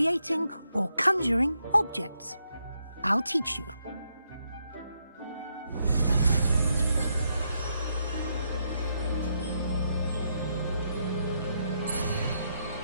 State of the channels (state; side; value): inverted; both; correlation -0.80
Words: or conjuring objects. I'll teach you.